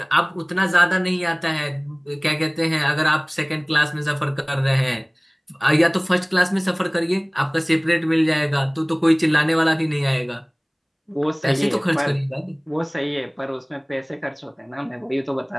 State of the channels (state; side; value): identical; both; correlation 1.00